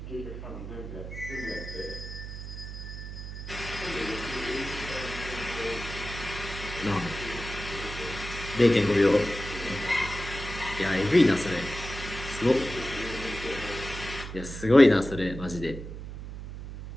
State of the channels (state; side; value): noise; right; hum, 9 dB below the sound